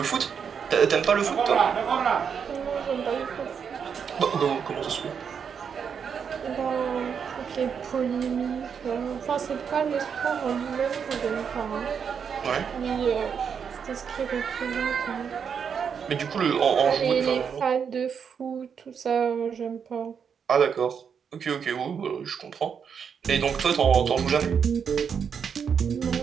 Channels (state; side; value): quieter; left; 6.9 dB